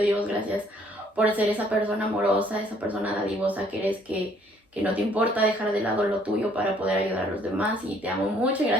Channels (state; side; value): normal; both; correlation 0.63